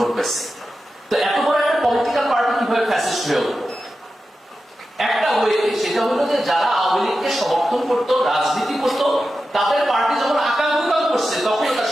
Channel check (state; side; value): normal; both; correlation 0.92